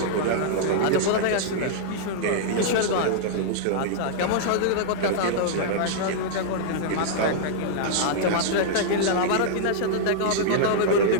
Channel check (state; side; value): different; both; correlation -0.02